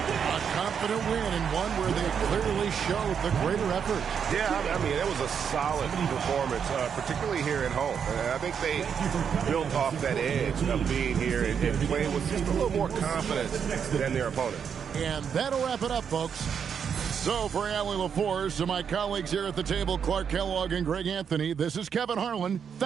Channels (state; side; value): quieter; left; 7.3 dB